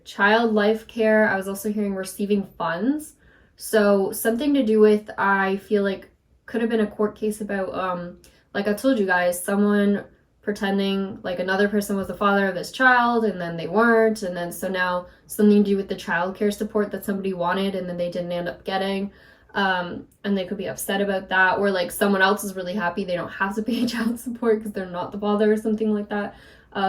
Child life care. I was also hearing receiving funds. So something to do with, I feel like, could have been a court case about, like I told you guys, someone pretending like another person was the father of this child and then they weren't, and then so now something to do with the child care support that somebody wanted and then they didn't end up getting, and they could be upset about that, or like someone else is really happy they don't have to pay child support because they're not the father or something like that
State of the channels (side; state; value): both; identical; correlation 1.00